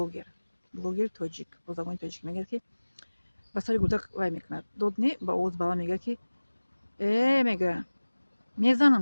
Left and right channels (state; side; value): inverted; both; correlation -1.00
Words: тоҷик бо забони тоҷик мегӯяд ки ба сари гудак вай мекунад. Дод не ба овози баланд мегӯяд ки мегӯяд